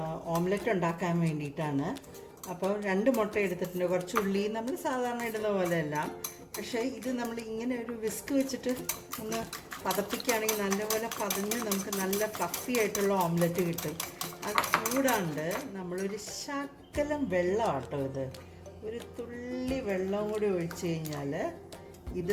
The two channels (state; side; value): identical; both; correlation 1.00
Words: ഓംലെറ്റ് ഉണ്ടാക്കാൻ വേണ്ടിയിട്ടാണ്. അപ്പോൾ 2 മുട്ട എടുത്തിട്ടുണ്ട്. കുറച്ച് ഉള്ളി നമ്മൾ സാധാരണ ഇടുന്ന പോലെയല്ല. പക്ഷേ ഇത് നമ്മൾ ഇങ്ങനെ ഒരു വിസ്ക് വെച്ചിട്ട് ഒന്ന് പതപ്പിക്കുകയാണെങ്കിൽ നല്ലപോലെ പതഞ്ഞ് നമുക്ക് നല്ല ഫ്ലഫി ആയിട്ടുള്ള ഓംലെറ്റ് കിട്ടും. അത് കൂടാണ്ട് നമ്മളൊരു ശകലം വെള്ളമാട്ടോ, ഇത് ഒരു തുള്ളി വെള്ളം കൂടി ഒഴിച്ച് കഴിഞ്ഞാൽ ഇത്